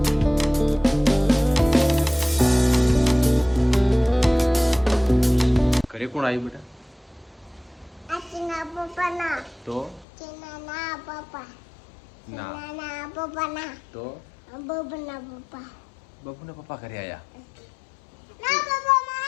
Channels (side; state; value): right; drops out; at 10.1 s